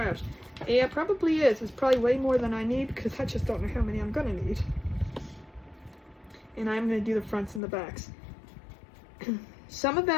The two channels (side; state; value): right; drops out; at 7.6 s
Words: Yeah, it probably is. It's probably way more than I need, because I just don't know how many I'm going to need. And I'm going to do the fronts and the backs. Some of